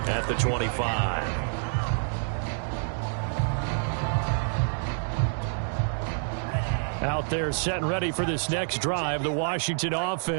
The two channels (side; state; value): left; silent; digital silence